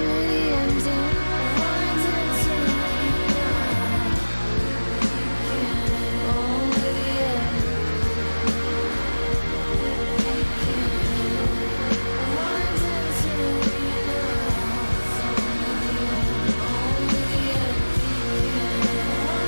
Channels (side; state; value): both; inverted; correlation -1.00